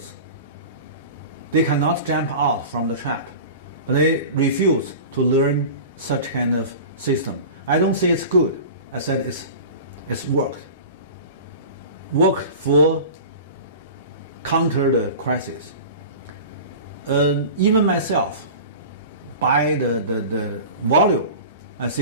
They cannot jump out from the trap. But they refuse to learn such kind of system. I don't say it's good. I said it's worked. Worked for counter the crisis. Even myself, by the volume, I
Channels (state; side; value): inverted; both; correlation -0.35